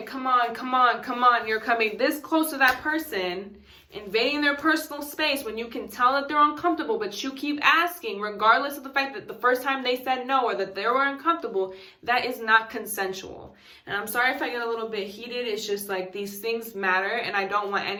Come on, come on, come on. You're coming this close to that person, invading their personal space when you can tell that they're uncomfortable, but you keep asking, regardless of the fact that the first time they said no or that they were uncomfortable, that is not consensual. And I'm sorry if I get a little bit heated. It's just like these things matter, and I don't want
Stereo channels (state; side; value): identical; both; correlation 1.00